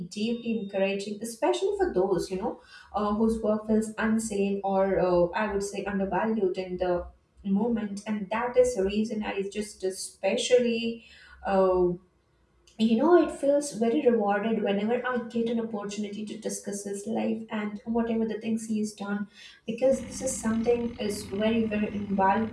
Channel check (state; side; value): identical; both; correlation 1.00